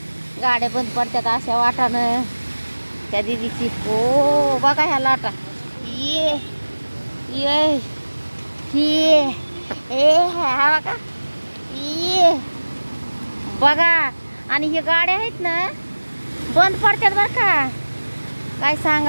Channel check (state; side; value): inverted; both; correlation -1.00